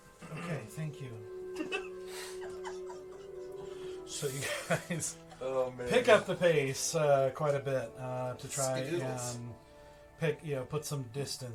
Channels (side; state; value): both; identical; correlation 1.00